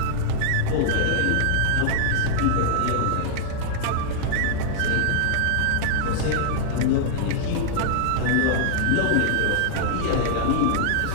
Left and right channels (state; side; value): different; both; correlation -0.01